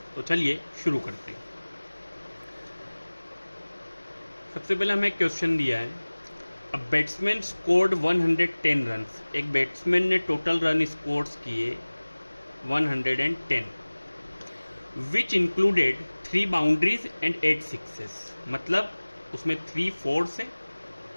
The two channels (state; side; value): inverted; both; correlation -1.00